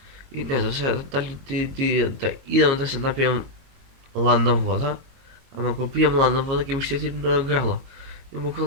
и не знам сега дали да идам да се напием ладна вода. Ама ако пием ладна вода, ќе ми щетим на грала. И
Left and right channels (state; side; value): late; left; 22 ms